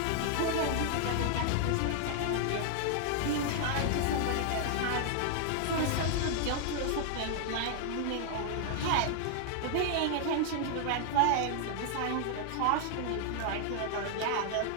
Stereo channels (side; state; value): both; different; correlation 0.00